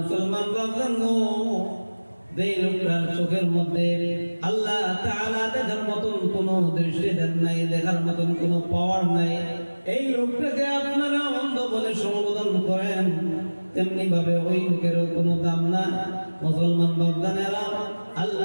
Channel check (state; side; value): inverted; both; correlation -1.00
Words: বাপজান গো, যে লোকটার চোখের মধ্যে আল্লাহ তাআলা দেখার মতন কোনো দৃষ্টি দেন নাই, দেখার মতন কোনো পাওয়ার নাই, এই লোকটাকে আপনারা অন্ধ বলে সম্বোধন করেন, তেমনি ভাবে ওই লোকের কোনো দাম না। মুসলমান বাপদানেরা,